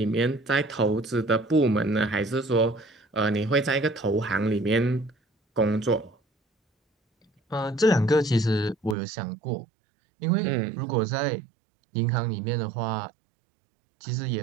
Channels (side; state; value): left; drops out; at 9.0 s